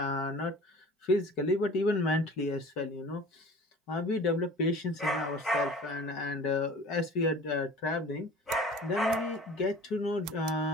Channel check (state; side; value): normal; both; correlation 0.43